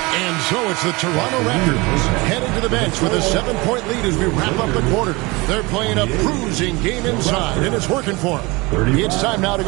And so it's the Toronto Raptors heading to the bench with a 7-point lead as we wrap up the quarter. They're playing a bruising game inside, and it's working for them. It's time now to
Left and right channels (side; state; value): left; quieter; 24.5 dB